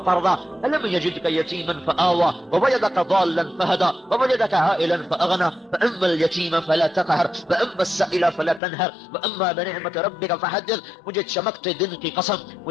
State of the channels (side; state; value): right; drops out; at 8.6 s